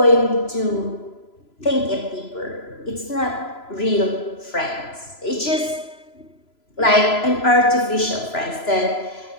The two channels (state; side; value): late; right; 3.0 ms